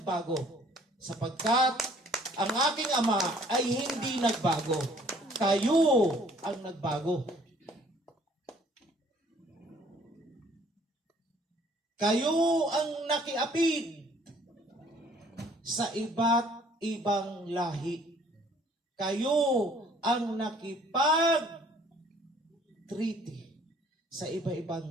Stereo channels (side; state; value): both; normal; correlation 0.58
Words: sapagkat ang aking Ama ay hindi nagbago. Kayo ang nagbago. Kayo ang nakiapid sa iba't ibang lahi. Kayo ang nakipag-treaty sa